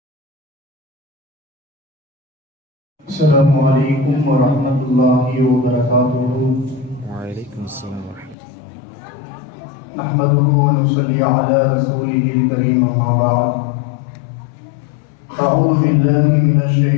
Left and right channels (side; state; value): right; drops out; at 8.3 s